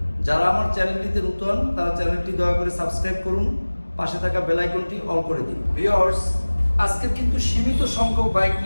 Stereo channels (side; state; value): both; inverted; correlation -1.00